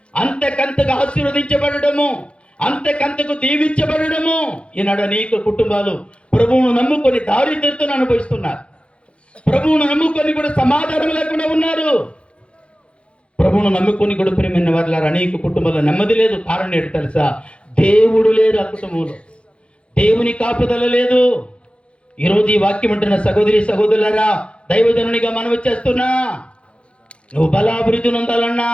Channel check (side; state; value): right; late; 0.059 ms